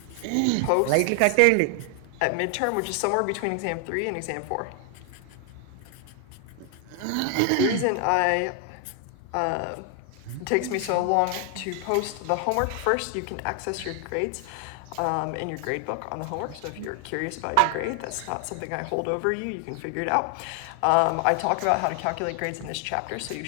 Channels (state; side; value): different; both; correlation 0.00